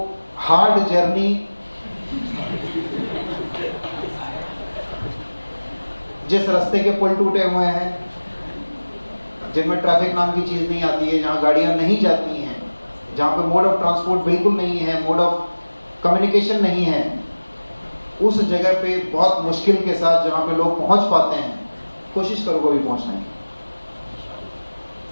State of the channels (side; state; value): both; inverted; correlation -1.00